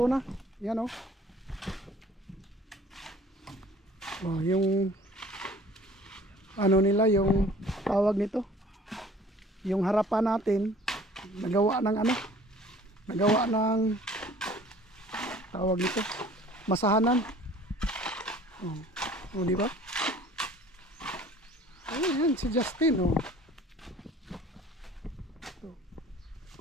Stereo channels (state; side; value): normal; both; correlation 0.51